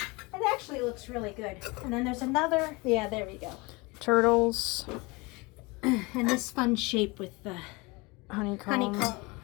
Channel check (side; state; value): right; quieter; 25.5 dB